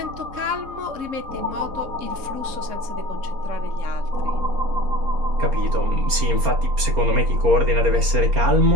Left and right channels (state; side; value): late; left; 4.3 ms